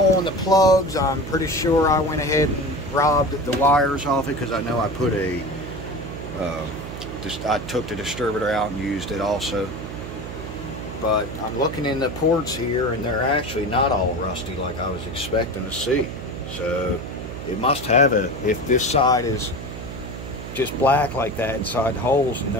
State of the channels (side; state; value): right; noise; hum, 9 dB below the sound